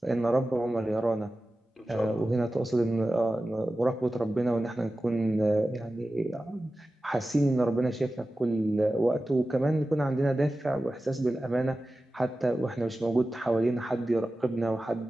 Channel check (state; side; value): normal; both; correlation 0.95